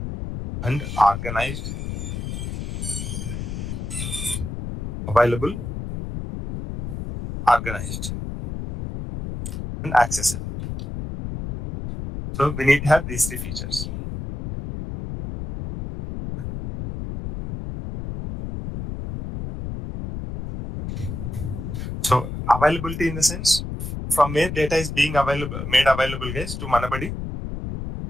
and organized. Available, organized, and accessible. So we need to have these three features. So availability in the sense from where data is being made available, guys, to Manabadi.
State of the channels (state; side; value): noise; left; rumble, 6 dB below the sound